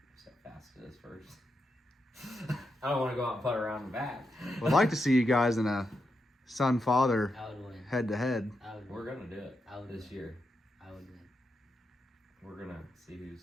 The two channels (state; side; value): normal; both; correlation 0.85